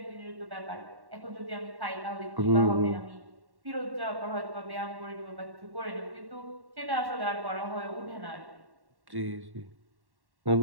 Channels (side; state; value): left; late; 1.1 ms